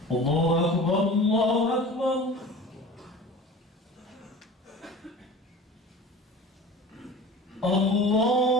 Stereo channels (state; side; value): normal; both; correlation 0.38